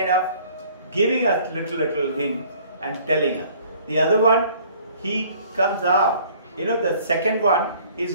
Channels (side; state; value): both; inverted; correlation -0.55